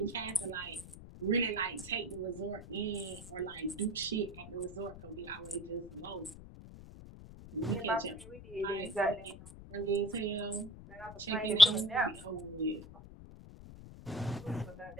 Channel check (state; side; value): noise; left; rumble, 15 dB below the sound